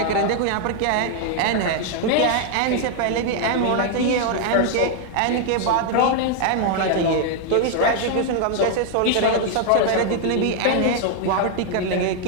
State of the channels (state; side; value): different; both; correlation 0.00